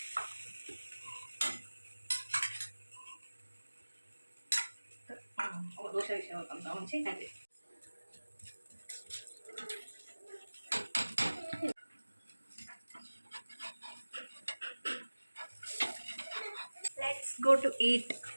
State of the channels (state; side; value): inverted; both; correlation -1.00